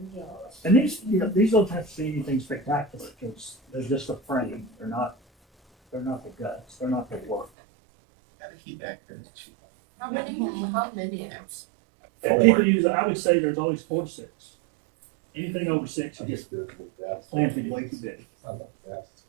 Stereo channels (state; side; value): drops out; left; at 7.5 s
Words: And these don't have to be anything spectacular because they're just a frame. They're not the guts. They're not the work. Gotta keep actors cheap. How many apps? And people use, I would say there's always 4 to 6. Anything over 6 is planted way too big. It's